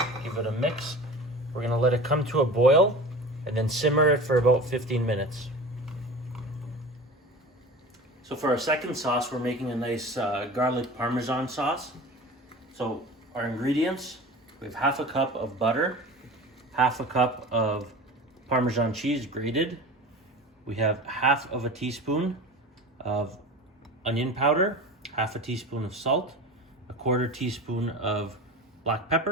Give it a mix. We're gonna let it come to a boil and then simmer it for about 15 minutes. So for our second sauce, we're making a nice garlic parmesan sauce. So our ingredients, we have half a cup of butter, half a cup of Parmesan cheese grated. We have half of a teaspoon of onion powder, half a teaspoon of salt, a quarter teaspoon of black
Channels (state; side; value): normal; both; correlation 0.35